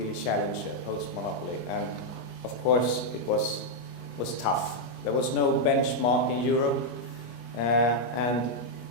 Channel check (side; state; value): right; late; 25 ms